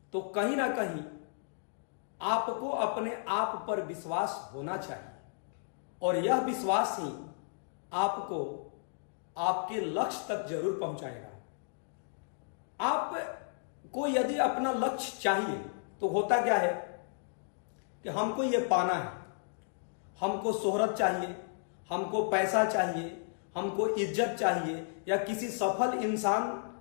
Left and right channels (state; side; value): silent; right; digital silence